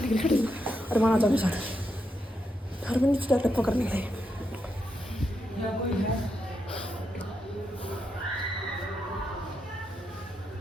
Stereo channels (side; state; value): both; normal; correlation 0.83